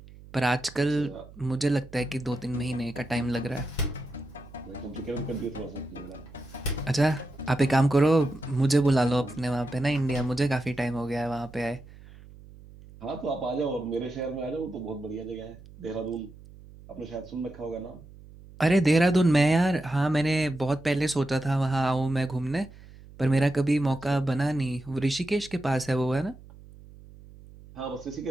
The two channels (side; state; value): right; noise; hum, 20 dB below the sound